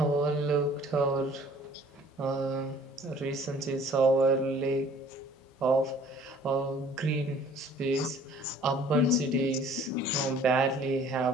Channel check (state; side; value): normal; both; correlation 0.53